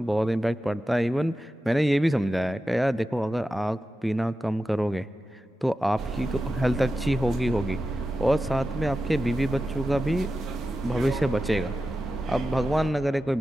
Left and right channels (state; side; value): normal; both; correlation 0.92